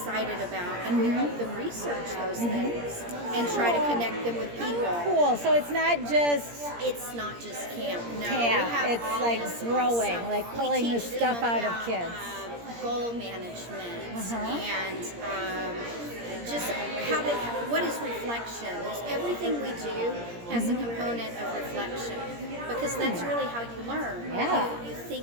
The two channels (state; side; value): late; left; 17 ms